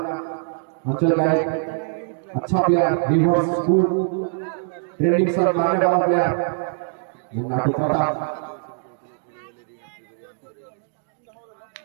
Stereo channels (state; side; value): silent; left; digital silence